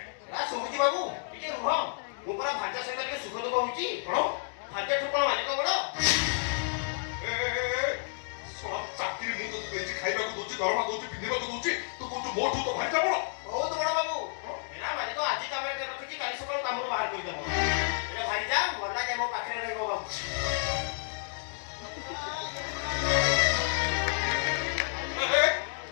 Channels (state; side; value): silent; right; digital silence